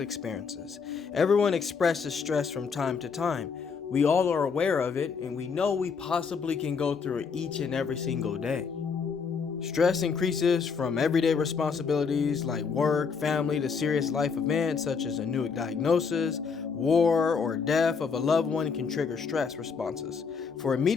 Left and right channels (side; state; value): right; quieter; 5.6 dB